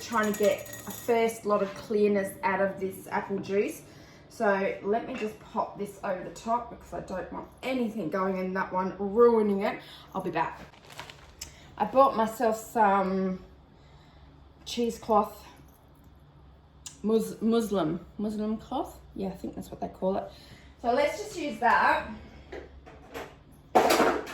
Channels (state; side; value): identical; both; correlation 1.00